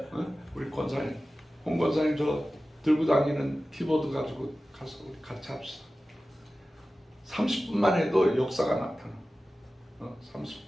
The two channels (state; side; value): normal; both; correlation 0.95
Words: 우리 권사님, 홍 권사님 저 들고 다니는 키보드 가지고 가서 우리 같이 합시다. 30분만 해도 역사가 나타나.